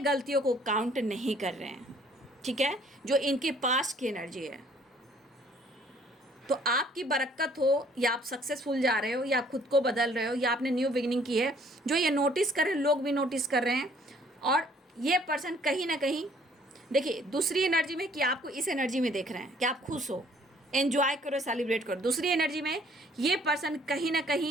को काउंट नहीं कर रहे हैं। ठीक है, जो इनके पास की एनर्जी है। तो आपकी बरकत हो, या आप सक्सेसफुल जा रहे हो, या खुद को बदल रहे हो, या आपने न्यू बिगिनिंग की है, जो ये नोटिस कर रहे हैं, लोग भी नोटिस कर रहे हैं। और ये पर्सन कहीं ना कहीं, देखिए, दूसरी एनर्जी में कि आपको इस एनर्जी में देख रहे हैं कि आप खुश हो, एंजॉय करो, सेलिब्रेट करो। दूसरी एनर्जी में ये पर्सन कहीं ना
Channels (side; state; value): both; normal; correlation 0.59